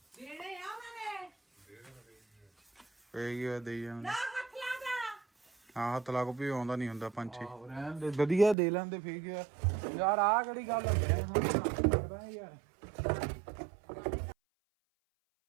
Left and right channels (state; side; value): drops out; left; at 8.6 s